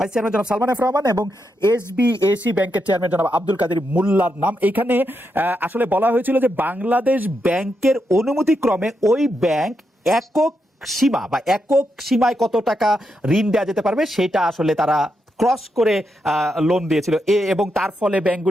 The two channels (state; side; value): normal; both; correlation 0.83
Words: চেয়ারম্যান জনাব সালমান এফ রহমান এবং এসবিএসি ব্যাংকের চেয়ারম্যান জনাব আব্দুল কাদের মোল্লার নাম। এখানে আসলে বলা হয়েছিল যে বাংলাদেশ ব্যাংকের অনুমতিক্রমে ওই ব্যাংক একক সীমায় কত টাকা ঋণ দেওয়া যেতে পারবে সেটা আসলে তারা ক্রস করে লোন দিয়েছিল, এবং তার ফলে